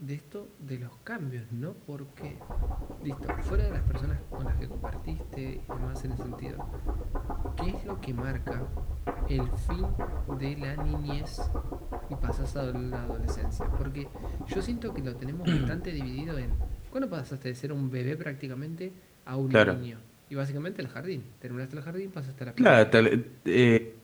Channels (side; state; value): both; identical; correlation 1.00